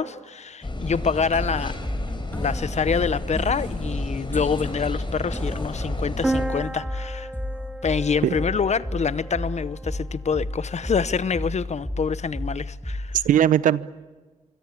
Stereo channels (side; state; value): both; normal; correlation 0.48